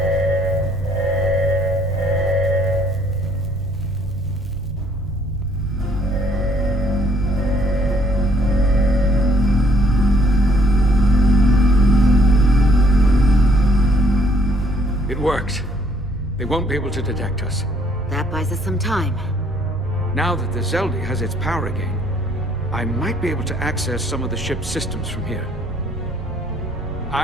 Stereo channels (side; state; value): both; normal; correlation 0.64